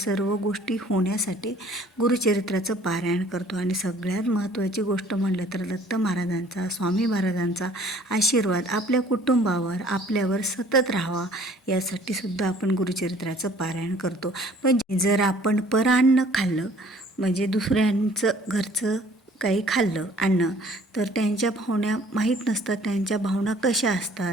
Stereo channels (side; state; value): both; normal; correlation 0.55